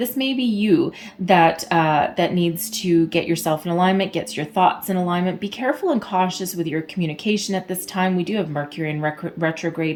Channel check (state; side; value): identical; both; correlation 1.00